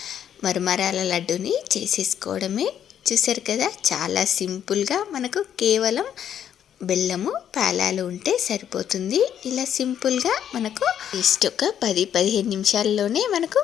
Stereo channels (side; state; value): right; quieter; 9.5 dB